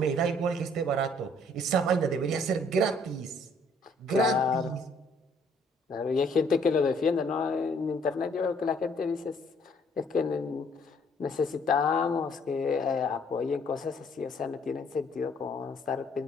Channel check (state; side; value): normal; both; correlation 0.62